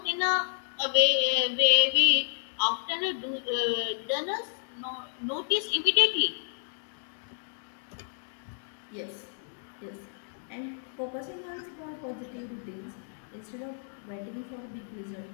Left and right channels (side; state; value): right; silent; digital silence